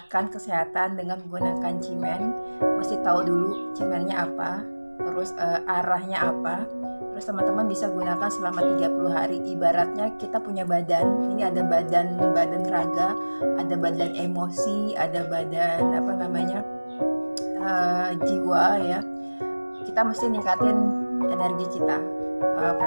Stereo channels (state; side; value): inverted; both; correlation -1.00